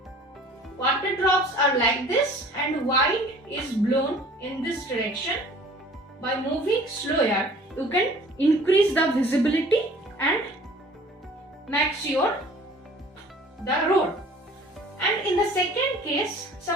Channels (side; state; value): both; normal; correlation 0.50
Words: water drops are like this and wind is blown in this direction, by moving slower, you can increase the visibility and make sure the road. And in the second case,